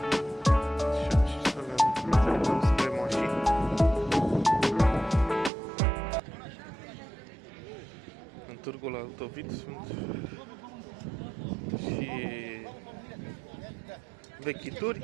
În târgul Altovit sunt și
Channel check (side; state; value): left; drops out; at 5.5 s